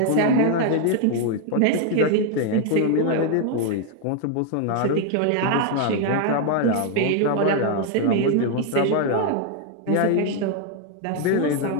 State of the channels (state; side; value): different; both; correlation 0.00